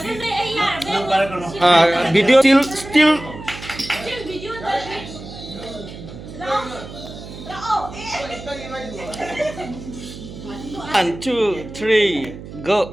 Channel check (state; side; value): noise; right; hum, 13 dB below the sound